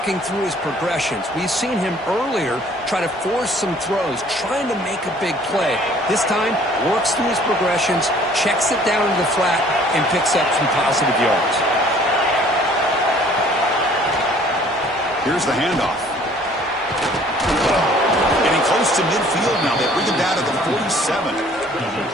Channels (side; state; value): both; normal; correlation 0.55